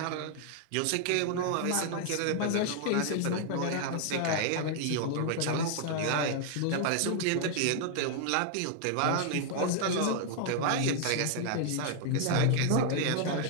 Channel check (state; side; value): different; both; correlation 0.00